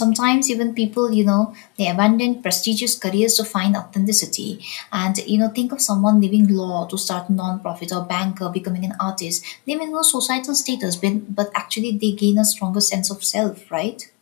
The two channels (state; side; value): quieter; right; 26.6 dB